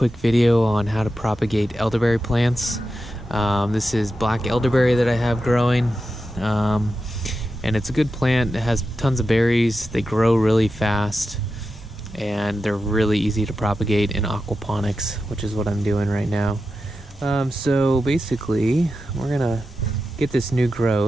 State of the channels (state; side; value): normal; both; correlation 0.90